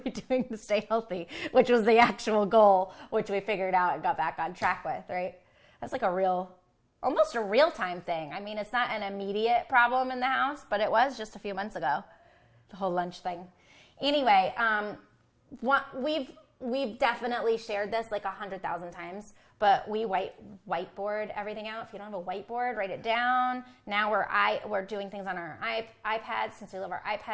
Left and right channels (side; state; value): both; identical; correlation 1.00